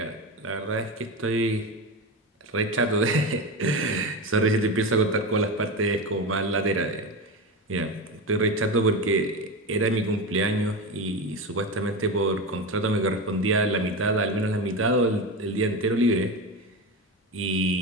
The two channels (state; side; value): normal; both; correlation 0.20